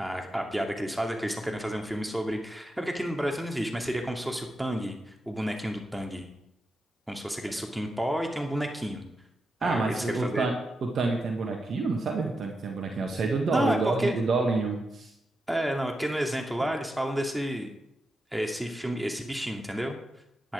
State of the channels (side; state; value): both; normal; correlation 0.87